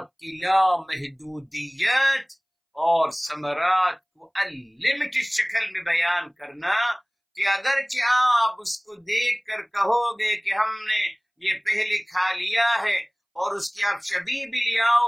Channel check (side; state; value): both; identical; correlation 1.00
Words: کی لامحدودیت اور ثمرات کو انلمیٹڈ شکل میں بیان کرنا کہ اگرچہ آپ اس کو دیکھ کر کہو گے کہ ہم نے یہ پہلے کھا لیا ہے اور اس کی آپ شبیہ بھی لے آؤ